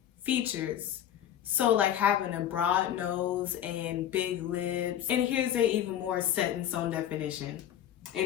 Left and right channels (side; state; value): right; quieter; 10.7 dB